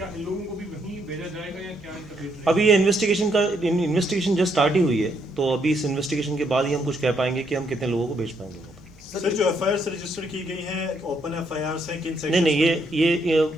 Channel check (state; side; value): normal; both; correlation 0.74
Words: इन लोगों को भी वहीं भेजा जाएगा या क्या इनका वेट रहेगा? अभी ये इन्वेस्टिगेशन जस्ट स्टार्ट ही हुई है, तो अभी इस इन्वेस्टिगेशन के बाद ही हम कुछ कह पाएंगे कि हम कितने लोगों को भेज पाएंगे। सर, जो FIR रजिस्टर की गई हैं ओपन FIR हैं किन सेक्शन? नहीं, ये